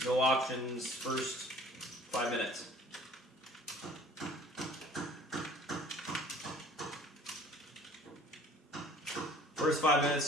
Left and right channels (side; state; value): both; normal; correlation 0.50